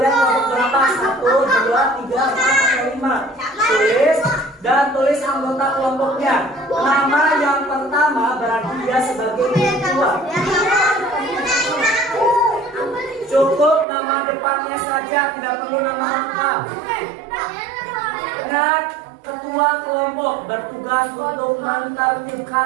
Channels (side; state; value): left; drops out; at 13.9 s